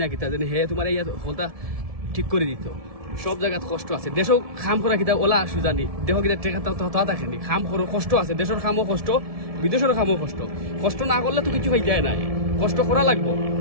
না কিতা জানি হে তোমার এই হলতা ঠিক করে দিত সব জায়গাত কষ্ট আছে দেশও খাম করা কিতা ওলা সুজানি দেহ কিতা টেকা তা দেখেনি খাম করো কষ্ট আছে দেশের খামও কষ্ট বিদেশের খামও কষ্ট কষ্ট না করলে তো কিছু হয়ে যায় নাই কষ্ট করা লাগবো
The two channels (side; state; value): left; late; 1.7 ms